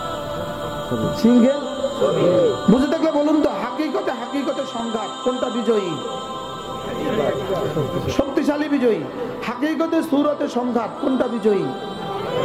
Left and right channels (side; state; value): both; identical; correlation 1.00